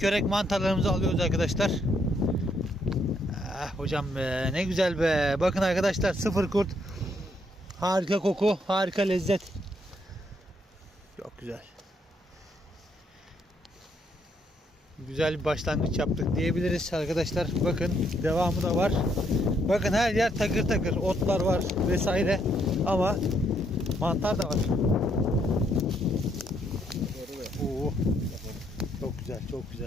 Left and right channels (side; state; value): both; normal; correlation 0.73